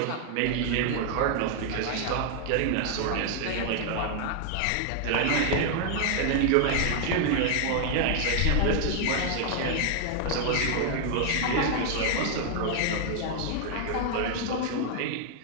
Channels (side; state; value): both; different; correlation 0.00